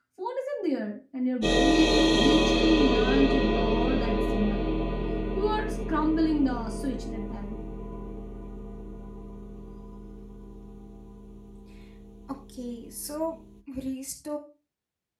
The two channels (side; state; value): both; identical; correlation 1.00